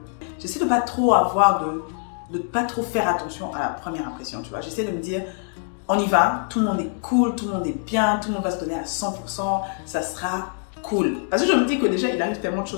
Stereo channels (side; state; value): right; silent; 58 dB below the other